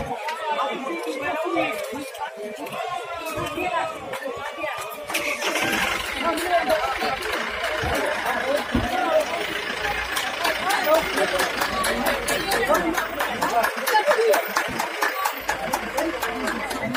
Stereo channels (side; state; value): both; identical; correlation 1.00